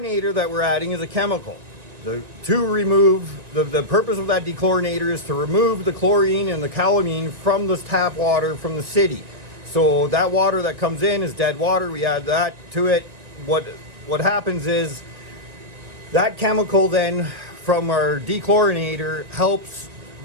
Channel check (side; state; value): left; late; 1.9 ms